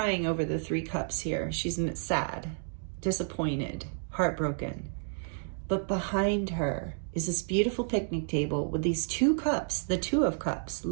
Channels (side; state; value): left; silent; digital silence